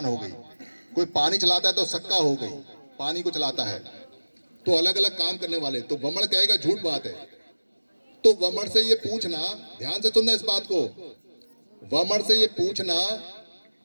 हो गई। कोई पानी चलाता है तो सक्का हो गई, पानी को चलाता है। तो अलग अलग काम करने वाले। तो वमन कहेगा झूठ बात है। तो वमन से ये पूछना, ध्यान से सुनना इस बात को, वमन से ये पूछना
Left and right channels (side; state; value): both; inverted; correlation -1.00